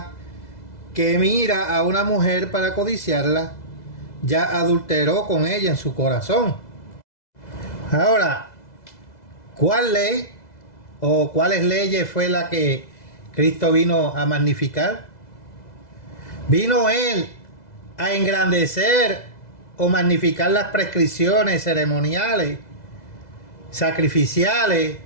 que mira a una mujer para codiciarla, ya adulteró con ella en su corazón. Ahora, ¿cuál ley o cuáles leyes fue la que Cristo vino a magnificar? ¿Vino Él a engrandecer o magnificar las prescripciones ceremoniales, sacrificiales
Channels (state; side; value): late; right; 2.0 ms